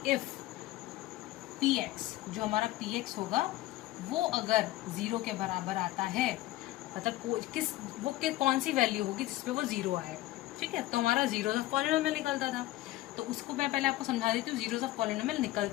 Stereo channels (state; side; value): quieter; right; 16.9 dB